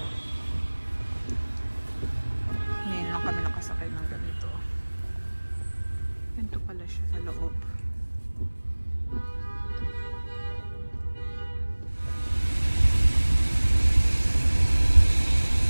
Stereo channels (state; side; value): inverted; both; correlation -1.00